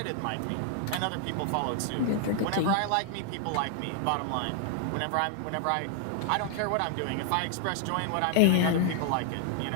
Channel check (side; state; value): both; different; correlation 0.00